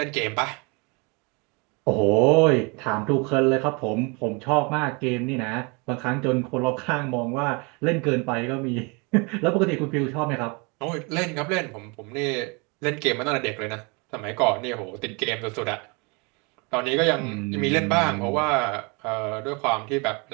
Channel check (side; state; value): left; quieter; 30.2 dB